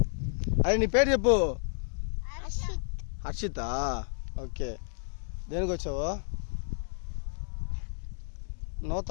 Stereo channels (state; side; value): silent; right; digital silence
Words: అదే నీ పేరు చెప్పు. హర్షిత. ఓకే, దేనికి వచ్చావు?